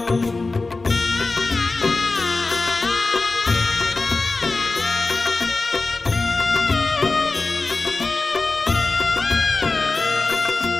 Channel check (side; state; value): right; quieter; 3.6 dB